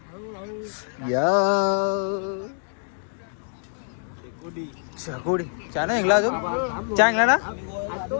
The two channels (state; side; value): silent; right; digital silence